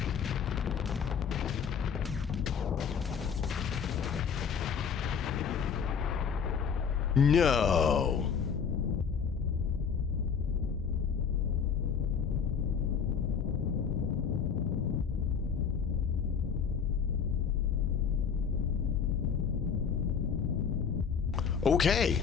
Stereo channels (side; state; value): right; quieter; 6.8 dB